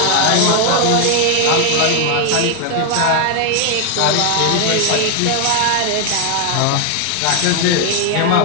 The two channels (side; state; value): both; different; correlation 0.01